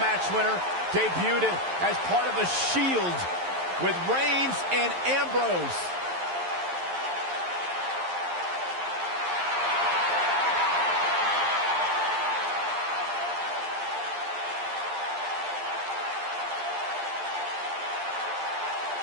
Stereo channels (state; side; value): late; left; 11 ms